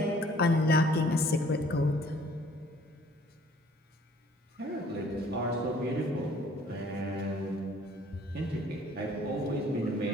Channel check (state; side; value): normal; both; correlation 0.57